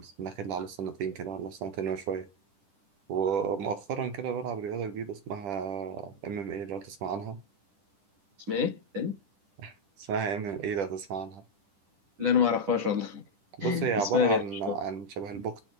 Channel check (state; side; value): late; left; 10 ms